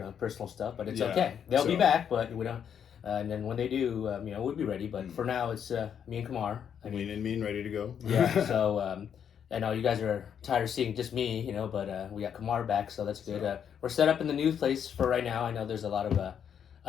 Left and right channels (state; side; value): quieter; right; 8.2 dB